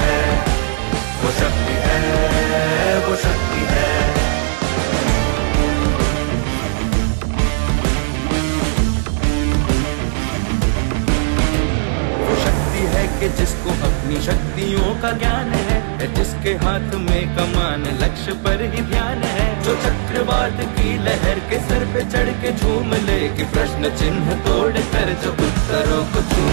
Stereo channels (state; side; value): silent; left; digital silence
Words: है, वो शक्ति है, वो शक्ति है। वो शक्ति है कि जिसको अपनी शक्तियों का ज्ञान है, जिसके हाथ में कमान लक्ष्य पर ही ध्यान है। जो चक्रवात की लहर के सर पे चढ़ के झूम ले, कि प्रश्न चिन्ह तोड़ कर जो उत्तरों को